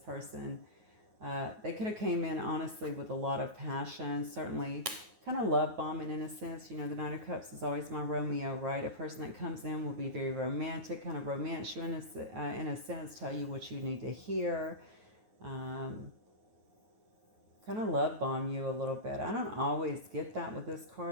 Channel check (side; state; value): left; late; 9.4 ms